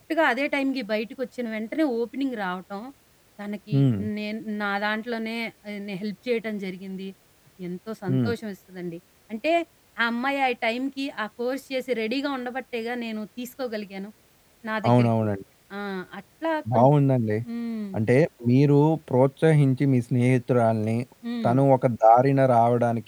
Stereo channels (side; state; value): both; identical; correlation 1.00